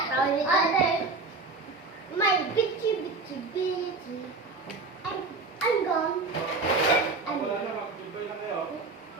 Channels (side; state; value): left; quieter; 3.8 dB